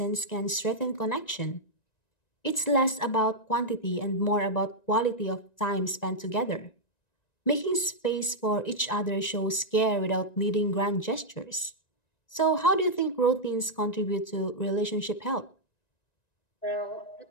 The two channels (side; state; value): right; late; 1.9 ms